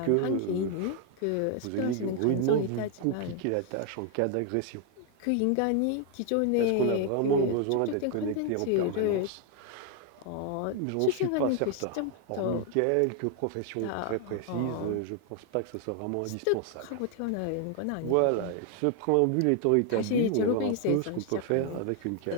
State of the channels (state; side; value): different; both; correlation 0.01